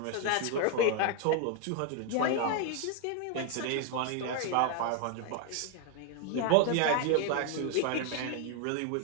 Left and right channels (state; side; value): different; both; correlation 0.01